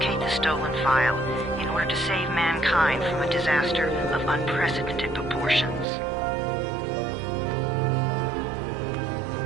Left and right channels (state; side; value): drops out; left; at 5.9 s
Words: the stolen file in order to save mankind from a disaster of unprecedented proportions.